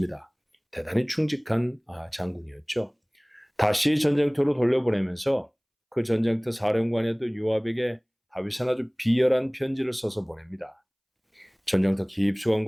대단히 충직한 장군이었죠. 다시 전쟁터로 돌려보내면서 그 전쟁터 사령관에도 요압에게 다윗은 아주 비열한 편지를 써서 보냅니다. 전쟁터 깊숙한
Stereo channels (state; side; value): identical; both; correlation 1.00